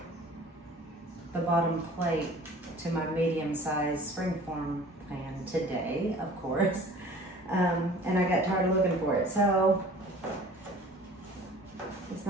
the bottom plate to my medium-sized springform pan today, of course. And I got tired of looking for it. So it's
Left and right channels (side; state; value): both; normal; correlation 0.46